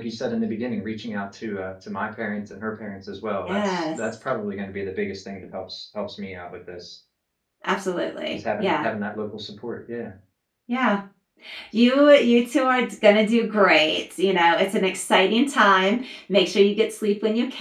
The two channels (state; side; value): identical; both; correlation 1.00